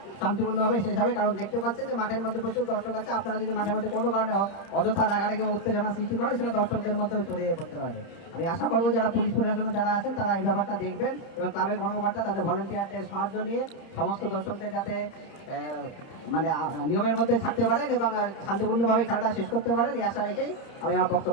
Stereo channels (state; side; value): late; right; 30 ms